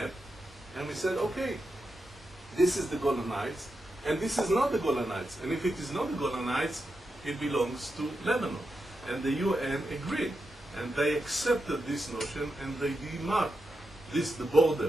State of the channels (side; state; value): both; normal; correlation 0.87